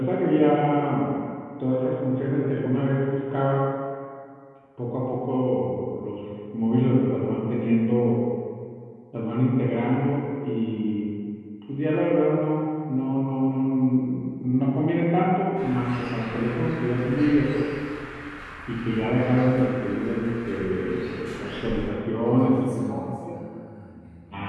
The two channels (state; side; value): identical; both; correlation 1.00